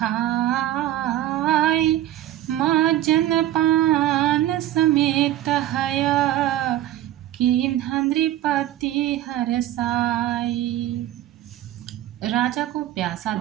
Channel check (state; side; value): quieter; left; 13.4 dB